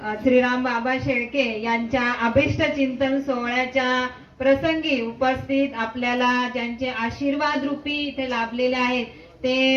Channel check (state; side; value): identical; both; correlation 1.00